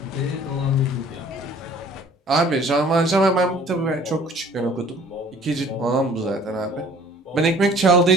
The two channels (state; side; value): normal; both; correlation 0.52